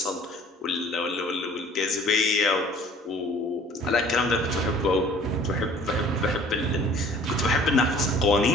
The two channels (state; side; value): normal; both; correlation 0.51